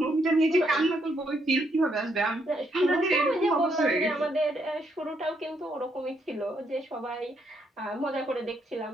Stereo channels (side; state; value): both; normal; correlation 0.75